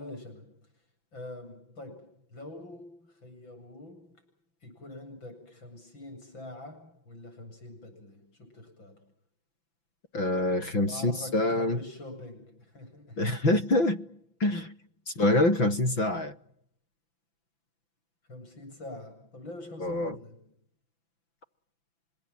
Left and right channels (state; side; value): late; right; 6.0 ms